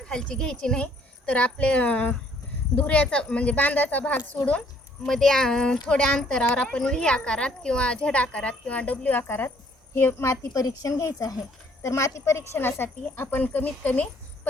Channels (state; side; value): normal; both; correlation 0.63